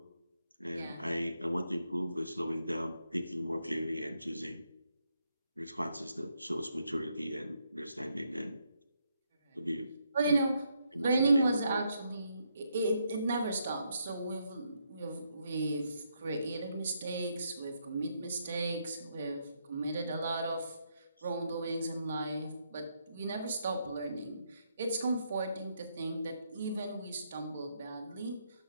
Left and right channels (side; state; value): both; inverted; correlation -0.77